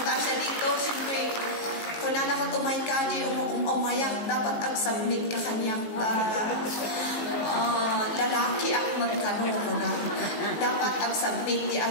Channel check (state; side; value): late; right; 18 ms